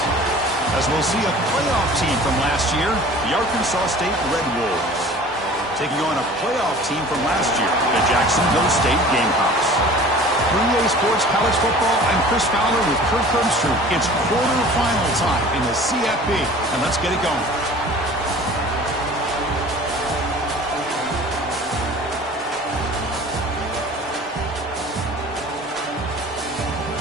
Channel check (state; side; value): normal; both; correlation 0.44